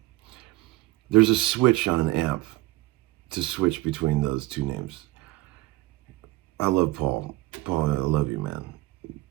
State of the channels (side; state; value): left; quieter; 19.0 dB